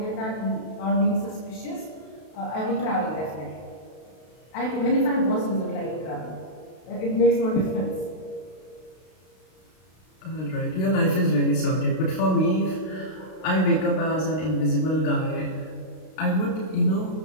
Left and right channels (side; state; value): right; late; 32 ms